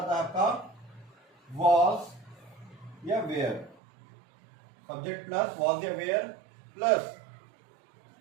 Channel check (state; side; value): drops out; left; at 3.8 s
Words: है आपका वॉज या वेयर, सब्जेक्ट प्लस वॉज या वेयर प्लस